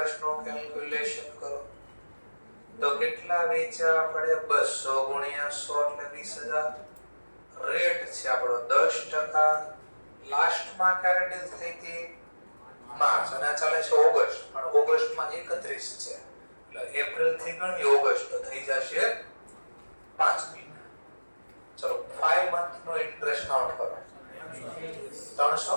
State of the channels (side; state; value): both; inverted; correlation -1.00